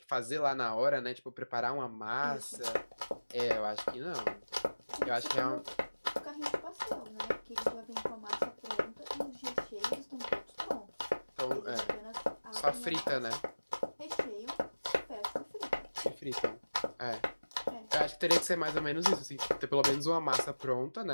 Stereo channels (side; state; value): both; inverted; correlation -1.00